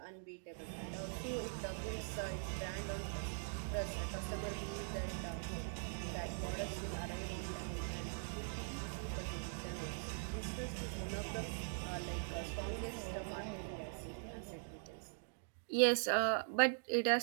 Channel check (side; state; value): left; silent; digital silence